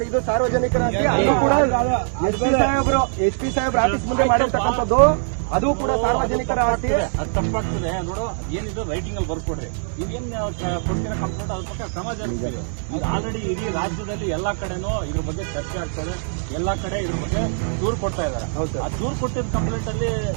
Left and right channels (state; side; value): silent; left; 64 dB below the other